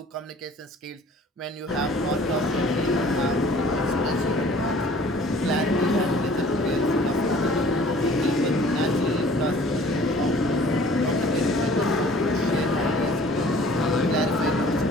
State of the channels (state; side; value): normal; both; correlation 0.51